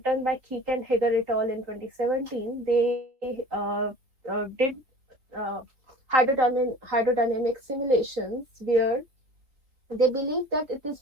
done by Keek and Hager et al. In 2017, they did uh, hydrodynamic simulations where they believe that it is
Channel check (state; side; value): late; left; 3.7 ms